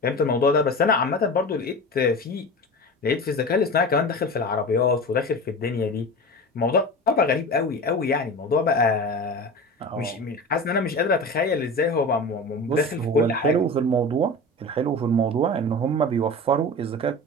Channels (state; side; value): normal; both; correlation 0.31